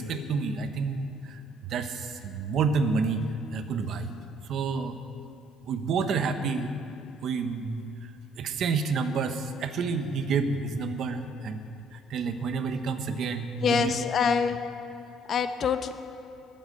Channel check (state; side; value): normal; both; correlation 0.63